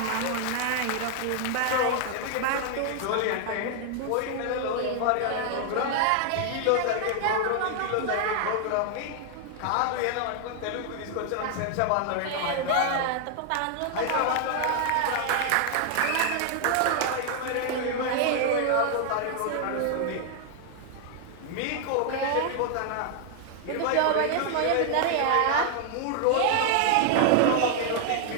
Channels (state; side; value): different; both; correlation 0.00